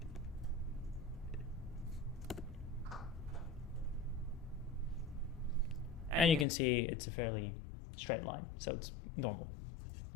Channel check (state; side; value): drops out; right; at 6.5 s